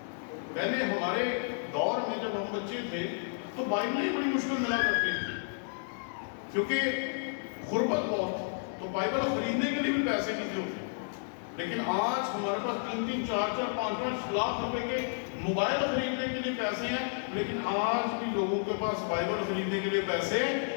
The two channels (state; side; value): silent; right; digital silence